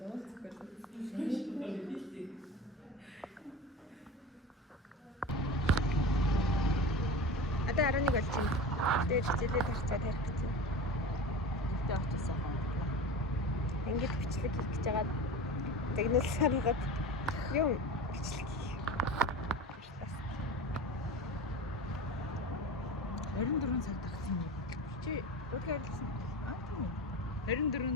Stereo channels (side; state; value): both; normal; correlation 0.30